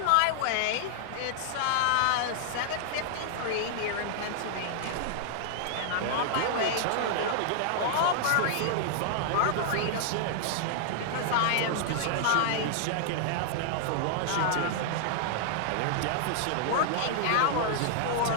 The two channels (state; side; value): different; both; correlation -0.01